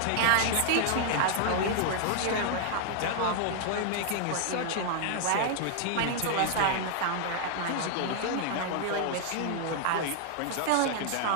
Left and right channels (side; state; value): both; different; correlation -0.01